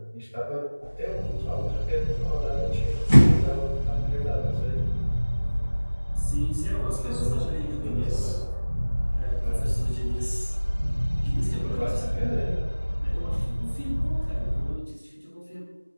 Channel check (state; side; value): inverted; both; correlation -1.00